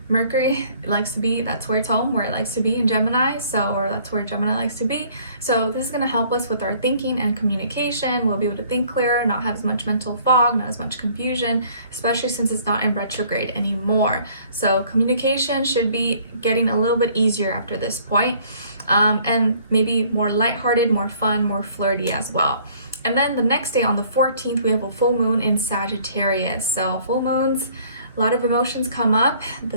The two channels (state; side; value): inverted; both; correlation -0.58